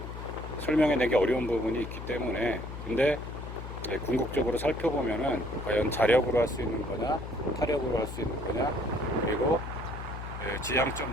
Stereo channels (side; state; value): left; noise; hum, 9 dB below the sound